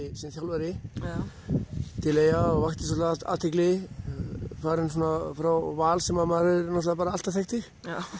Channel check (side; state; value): both; identical; correlation 1.00